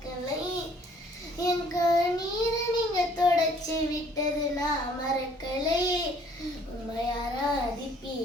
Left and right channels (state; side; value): normal; both; correlation 0.59